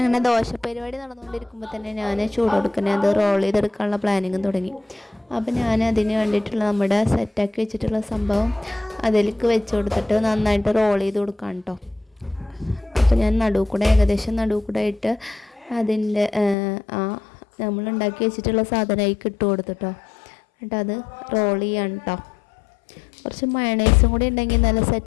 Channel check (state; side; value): drops out; right; at 16.6 s